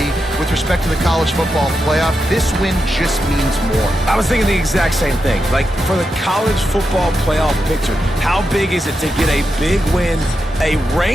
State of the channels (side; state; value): both; normal; correlation 0.87